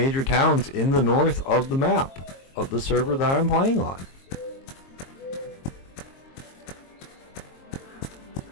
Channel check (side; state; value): right; late; 22 ms